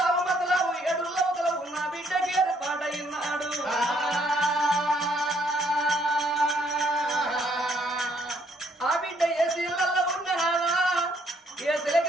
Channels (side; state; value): both; normal; correlation 0.68